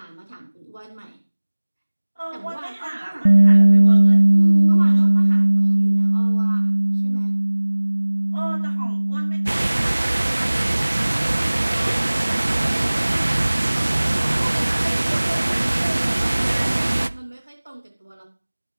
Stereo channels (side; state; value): both; inverted; correlation -1.00